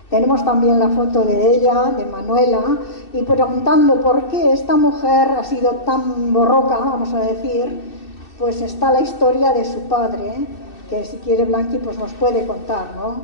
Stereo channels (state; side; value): late; right; 2.6 ms